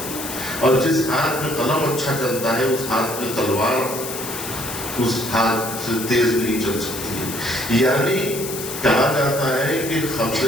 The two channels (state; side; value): noise; left; hiss, 8 dB below the sound